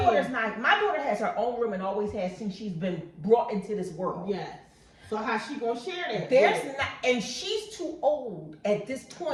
has her own room and always has since she's been brought into this world. Yes. So how's she gonna share that? There's not, and she's too old at this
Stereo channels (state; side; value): identical; both; correlation 1.00